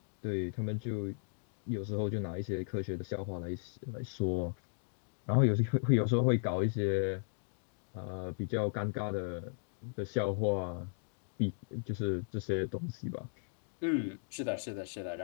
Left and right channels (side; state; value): right; silent; digital silence